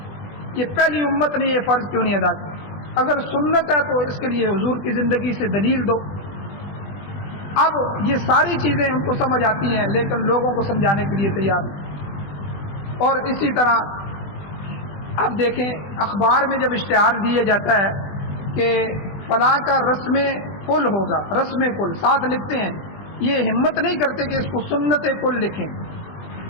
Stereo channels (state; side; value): late; right; 20 ms